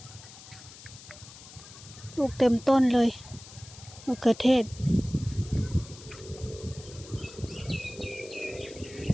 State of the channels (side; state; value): left; noise; hiss, 17 dB below the sound